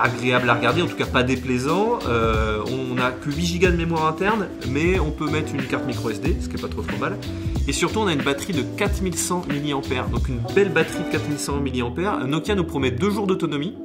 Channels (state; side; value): identical; both; correlation 1.00